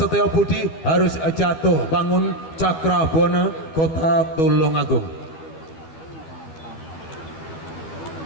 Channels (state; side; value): late; right; 12 ms